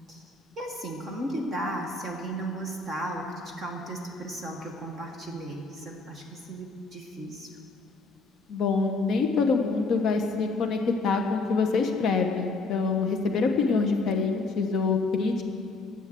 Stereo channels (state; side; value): quieter; right; 3.5 dB